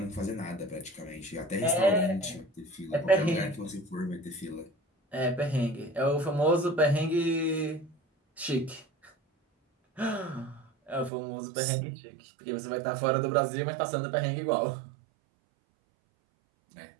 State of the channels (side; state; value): left; drops out; at 11.1 s